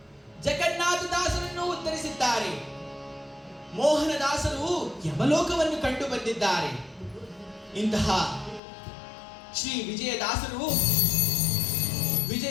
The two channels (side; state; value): right; drops out; at 8.6 s